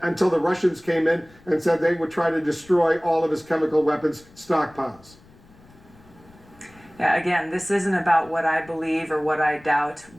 the Russians came in and said they would try to destroy all of his chemical weapons stockpiles. Yeah, again, this isn't about what I believe or what I doubt.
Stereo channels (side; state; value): left; noise; rumble, 26 dB below the sound